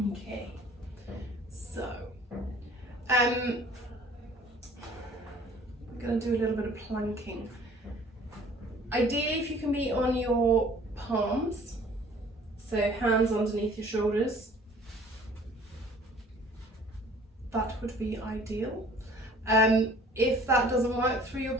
so we're going to do a little bit of planking. Ideally, if you can be on your palms, so hands underneath your shoulders, that would be ideal. If that doesn't work through your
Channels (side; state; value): both; normal; correlation 0.52